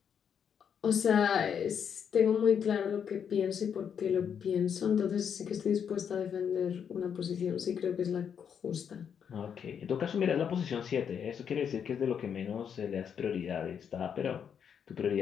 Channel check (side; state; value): right; quieter; 7.7 dB